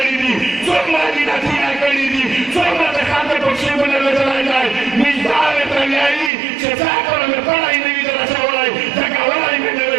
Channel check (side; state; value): left; drops out; at 6.3 s